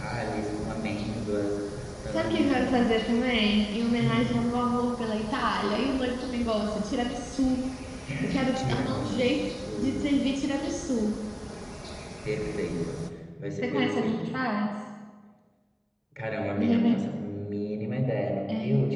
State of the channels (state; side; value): identical; both; correlation 1.00